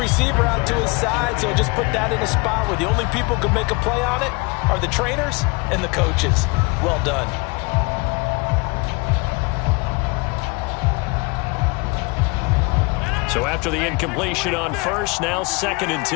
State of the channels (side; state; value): right; quieter; 27.5 dB